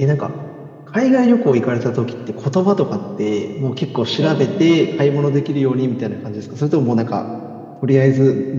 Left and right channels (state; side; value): identical; both; correlation 1.00